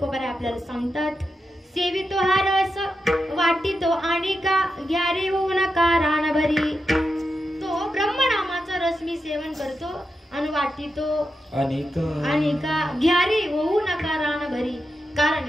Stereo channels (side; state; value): both; normal; correlation 0.88